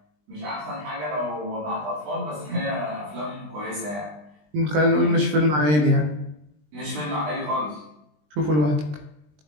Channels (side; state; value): left; late; 20 ms